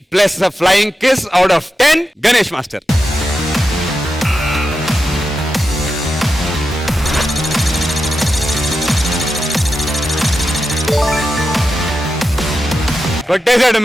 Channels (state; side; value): normal; both; correlation 0.89